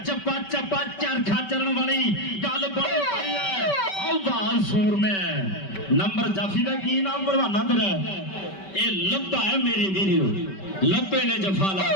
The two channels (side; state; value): right; late; 5.2 ms